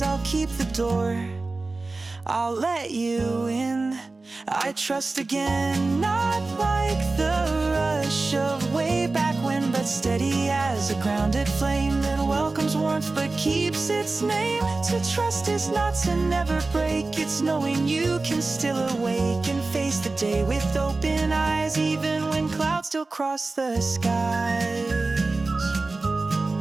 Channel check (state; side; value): quieter; left; 3.5 dB